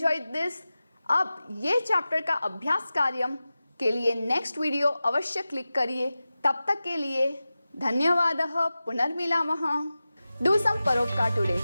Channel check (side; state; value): both; inverted; correlation -0.95